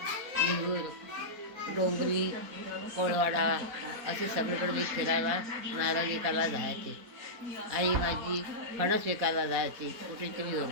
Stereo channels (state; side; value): late; left; 4.1 ms